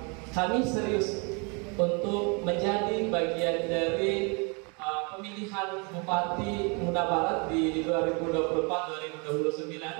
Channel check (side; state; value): left; quieter; 32.7 dB